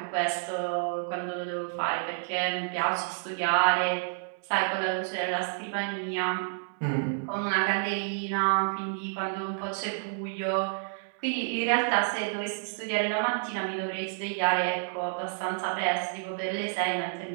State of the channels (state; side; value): silent; left; digital silence